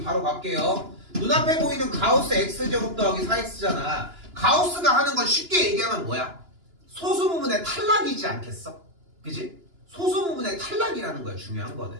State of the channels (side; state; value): left; late; 2.9 ms